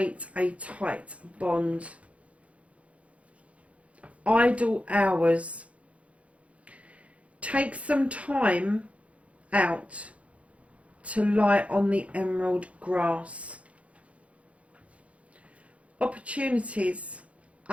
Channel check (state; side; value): late; left; 0.064 ms